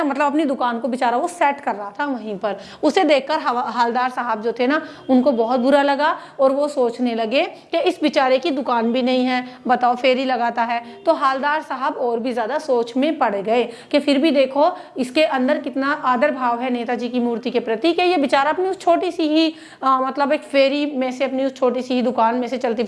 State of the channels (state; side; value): identical; both; correlation 1.00